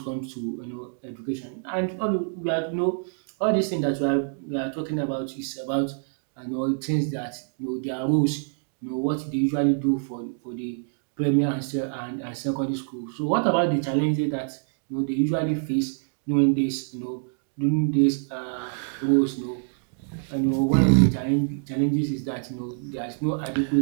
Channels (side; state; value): left; silent; digital silence